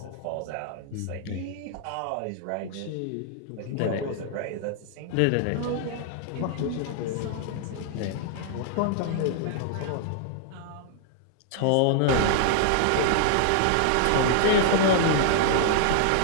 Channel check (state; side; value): different; both; correlation -0.01